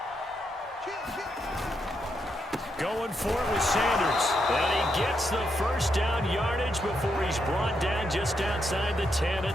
Going for it with Sanders. And he gets the first down yardage before he's brought down just outside the 10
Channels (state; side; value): normal; both; correlation 0.81